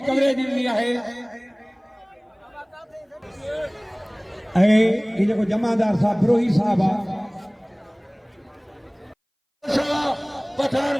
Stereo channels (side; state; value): both; identical; correlation 1.00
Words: कवरेज ॾिनी आहे ऐं ही जेको जमादार साहब फिरोही साहब आहे पठान